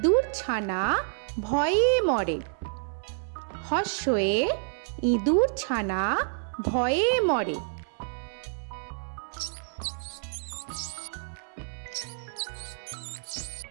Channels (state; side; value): silent; left; 59 dB below the other